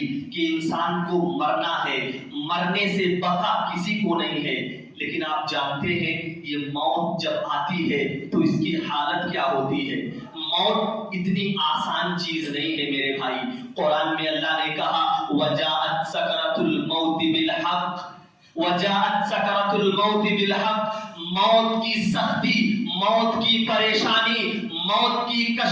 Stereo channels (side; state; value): both; identical; correlation 1.00